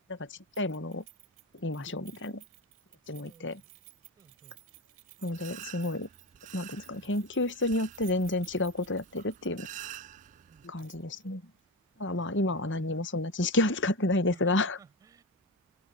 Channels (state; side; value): normal; both; correlation 0.21